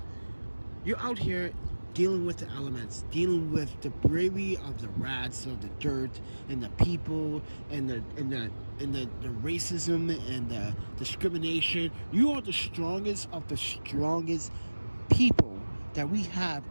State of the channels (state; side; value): inverted; both; correlation -1.00